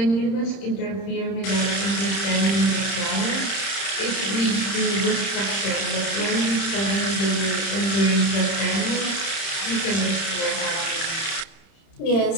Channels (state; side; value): late; right; 30 ms